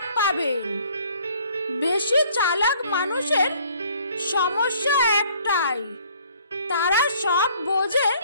পাবেন। বেশি চালাক মানুষের সমস্যা একটাই, তারা সব বোঝে,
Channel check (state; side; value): inverted; both; correlation -0.58